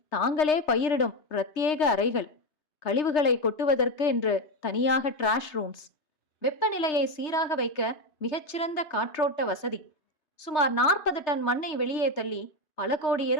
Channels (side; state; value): right; late; 3.3 ms